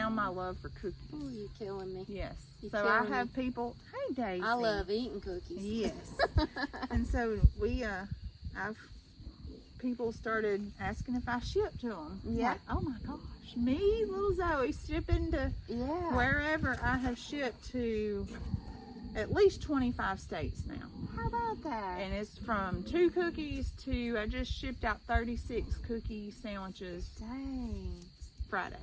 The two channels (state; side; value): identical; both; correlation 1.00